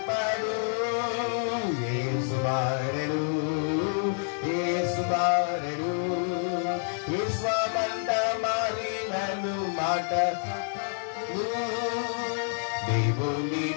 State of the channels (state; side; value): silent; right; 59 dB below the other